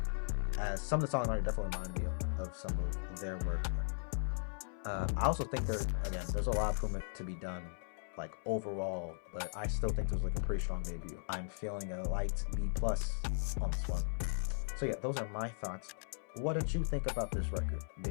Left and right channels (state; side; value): silent; right; 53 dB below the other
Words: as some of the songs definitely remind me of some of their work. I also think there's a lot of improvement to be done, like overall, but I still think there's like a pretty strong debut. I'm feeling a light B+ on this one. So yeah, those are my thoughts. What did you think about this record?